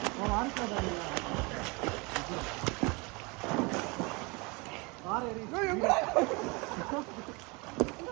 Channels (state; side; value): quieter; left; 27.8 dB